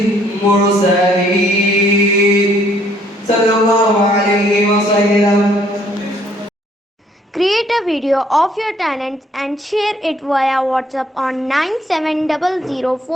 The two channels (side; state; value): both; normal; correlation 0.64